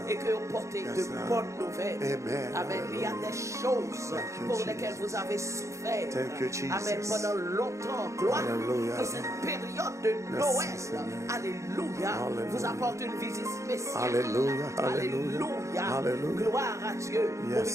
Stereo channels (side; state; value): left; late; 0.15 ms